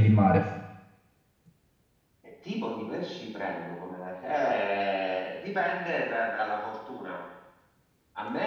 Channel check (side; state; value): both; identical; correlation 1.00